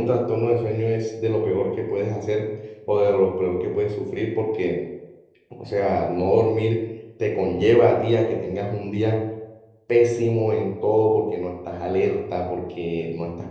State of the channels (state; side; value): identical; both; correlation 1.00